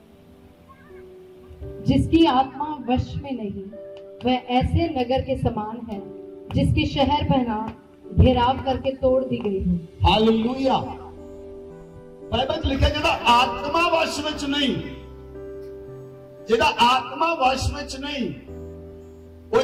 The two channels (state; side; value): identical; both; correlation 1.00